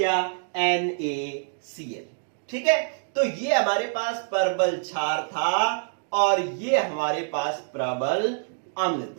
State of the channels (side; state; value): left; silent; digital silence